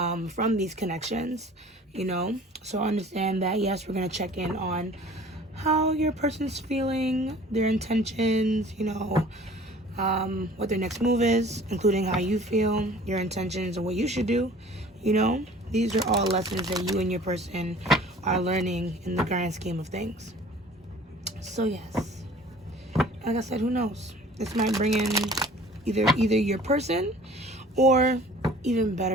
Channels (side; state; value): both; normal; correlation 0.48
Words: these connections, So understand that, yes, we're going to check in on how your person's feeling, their intentions, what their next move is, including how you feel, your intentions, and what you should do. These are all lessons that you and your person are learning in the grand scheme of things. So yes, like I said, who knows? This might bring in either your person or even